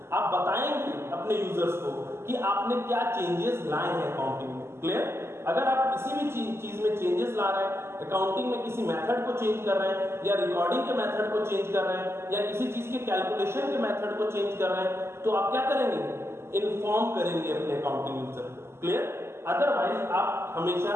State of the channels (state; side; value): late; left; 0.12 ms